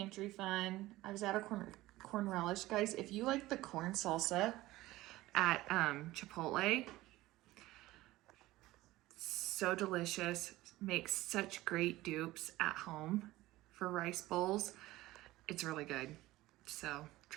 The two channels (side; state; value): left; quieter; 17.5 dB